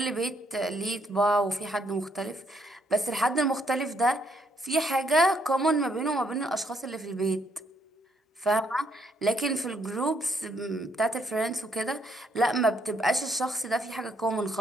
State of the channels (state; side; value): normal; both; correlation 0.72